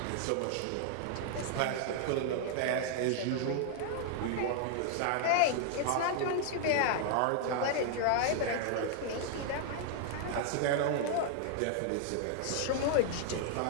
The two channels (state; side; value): different; both; correlation 0.00